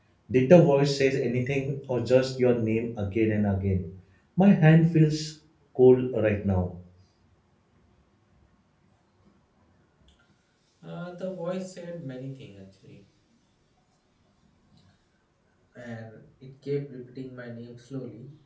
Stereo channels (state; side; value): identical; both; correlation 1.00